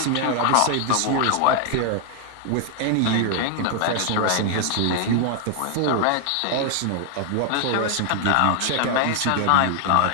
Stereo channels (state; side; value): different; both; correlation 0.00